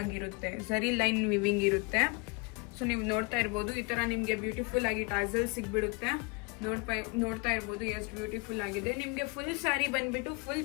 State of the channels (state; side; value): quieter; right; 29.2 dB